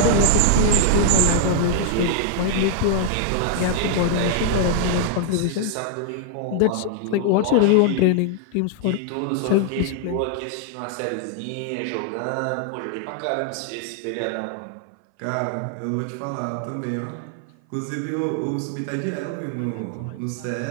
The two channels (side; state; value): both; different; correlation 0.00